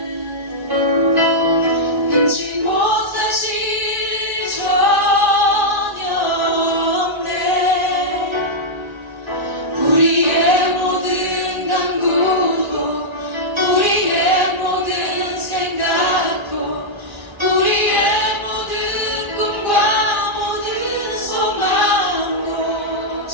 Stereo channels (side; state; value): left; late; 1.3 ms